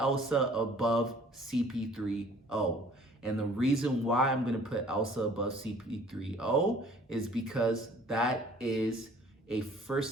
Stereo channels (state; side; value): normal; both; correlation 0.54